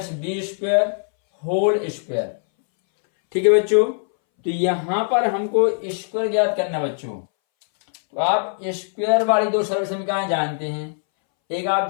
b square whole square. ठीक है बच्चों, तो यहां पर हमको स्क्वायर ज्ञात करना बच्चों। तो आप स्क्वायर वाली दो सरल समीकरण जानते हैं। एक आप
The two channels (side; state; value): right; silent; 63 dB below the other